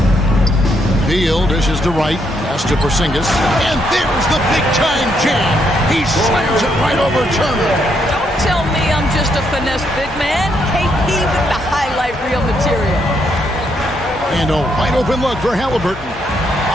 Beal dishes to Wright, pass to Porzingis, and there's the big-time jam. He slams it right over Turner. Don't tell me I'm just a finesse big man. KP with the highlight reel material. And a wide-open look for Halliburton.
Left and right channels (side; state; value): both; normal; correlation 0.76